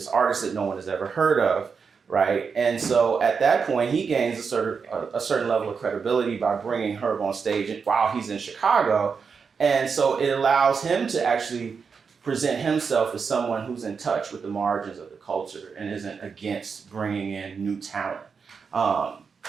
artist that no one has ever heard of, right? And so at that point, he gains a certain level of credibility by bringing Herb on stage while he's in Chicago. And so it allows him to actually present himself as someone who's in touch with the margins of the culture and isn't against bringing in new talent.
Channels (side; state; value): left; quieter; 5.7 dB